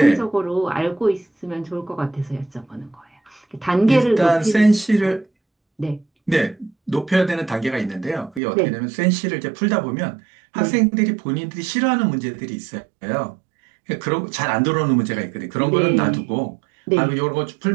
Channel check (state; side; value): drops out; left; at 8.4 s